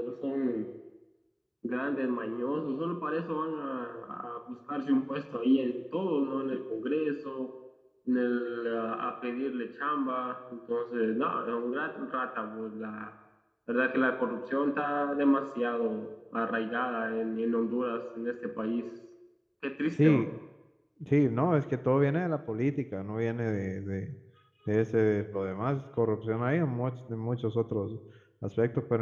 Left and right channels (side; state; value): both; identical; correlation 1.00